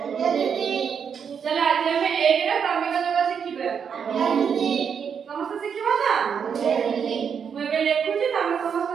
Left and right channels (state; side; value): quieter; left; 7.1 dB